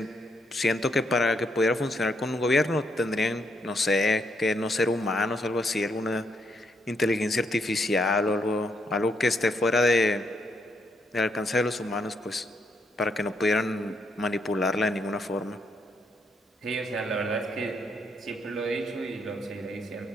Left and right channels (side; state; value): both; normal; correlation 0.76